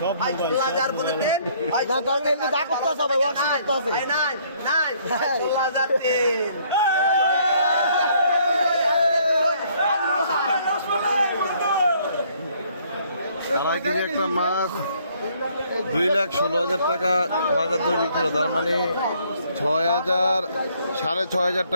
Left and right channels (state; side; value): inverted; both; correlation -0.64